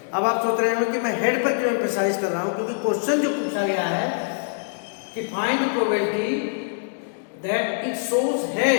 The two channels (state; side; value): silent; right; digital silence